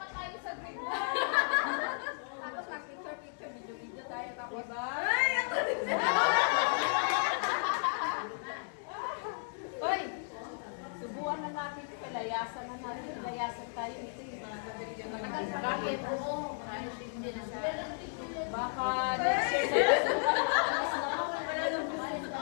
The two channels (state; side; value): silent; right; digital silence